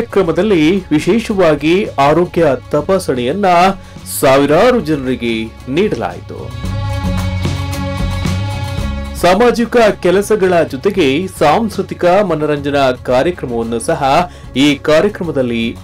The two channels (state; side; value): identical; both; correlation 1.00